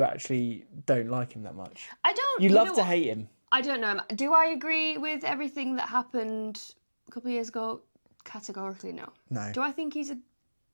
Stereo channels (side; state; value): both; inverted; correlation -1.00